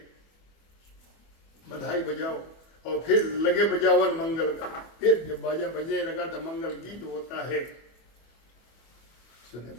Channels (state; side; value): late; right; 25 ms